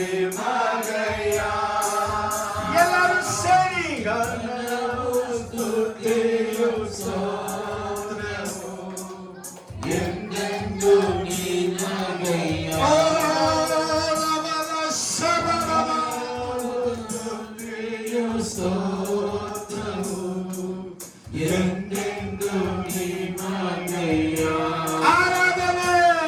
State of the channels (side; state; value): both; identical; correlation 1.00